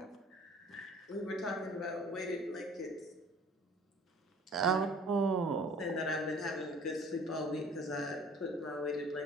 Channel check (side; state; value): both; normal; correlation 0.50